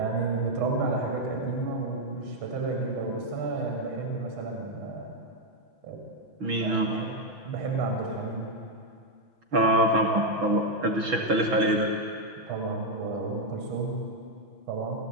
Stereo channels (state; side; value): late; left; 6.1 ms